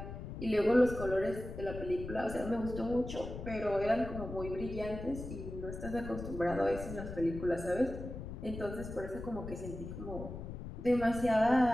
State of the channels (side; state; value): left; noise; rumble, 9 dB below the sound